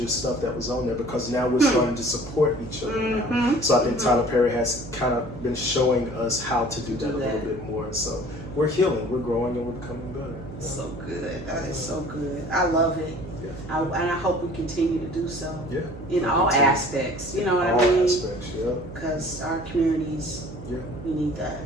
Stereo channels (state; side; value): noise; right; hum, 13 dB below the sound